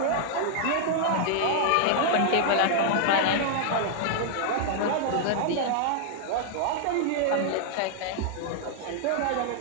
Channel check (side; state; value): both; different; correlation -0.01